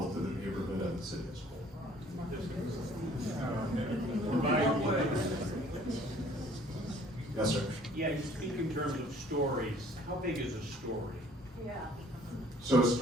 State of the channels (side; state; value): both; normal; correlation 0.56